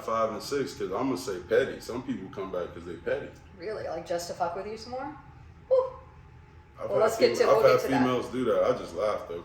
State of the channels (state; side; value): identical; both; correlation 1.00